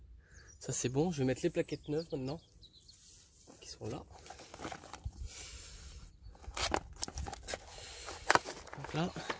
ça c'est bon. Je vais mettre les plaquettes neuves maintenant, qui sont là. Donc là.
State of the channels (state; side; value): identical; both; correlation 1.00